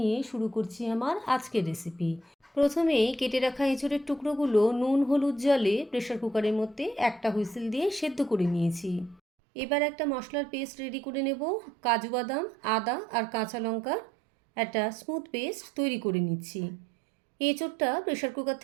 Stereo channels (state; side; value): drops out; left; at 9.2 s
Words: শুরু করছি আমার আজকের রেসিপি। প্রথমে কেটে রাখা এঁচোড়ের টুকরোগুলো নুন হলুদ জলে প্রেশার কুকারের মধ্যে একটা হুইসেল দিয়ে সেদ্ধ করে নিয়েছি। এবার একটা মশলার পেস্ট রেডি করে নেব। কাজু বাদাম, আদা আর কাঁচা লঙ্কার একটা স্মুথ পেস্ট তৈরি করে নিচ্ছি। এঁচোড়টা প্রেশার কুকার